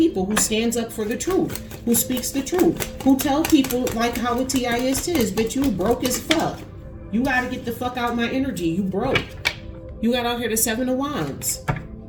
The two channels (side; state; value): both; identical; correlation 1.00